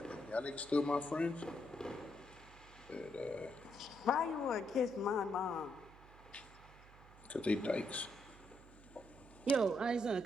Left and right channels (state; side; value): noise; right; hum, 21 dB below the sound